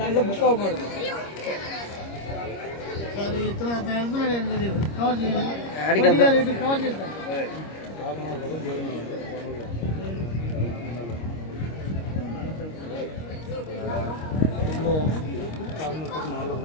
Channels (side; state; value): right; late; 26 ms